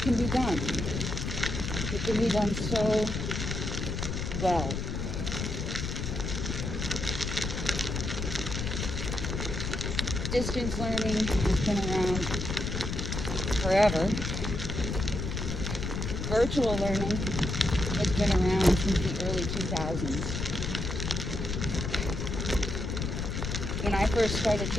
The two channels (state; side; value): noise; left; rumble, 3 dB below the sound